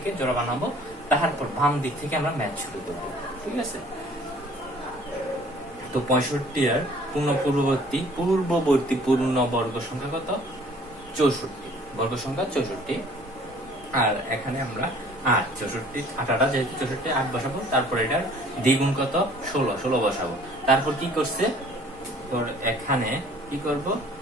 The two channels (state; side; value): normal; both; correlation 0.54